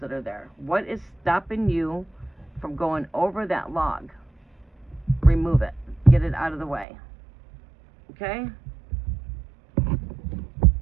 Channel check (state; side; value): drops out; left; at 6.9 s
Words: that are there. What is stopping you from going over that log? Remove it. Get it out of the way. Okay?